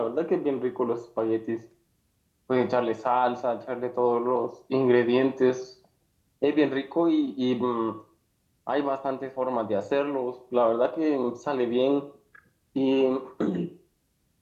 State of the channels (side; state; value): both; identical; correlation 1.00